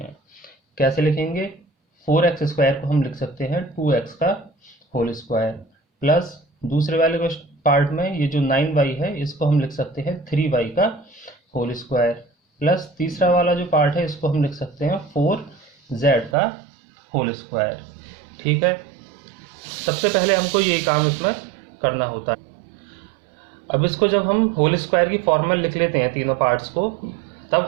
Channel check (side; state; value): left; drops out; at 16.4 s